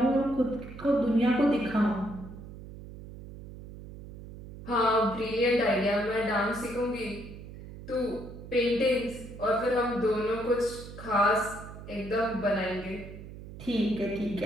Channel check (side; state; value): right; noise; hum, 14 dB below the sound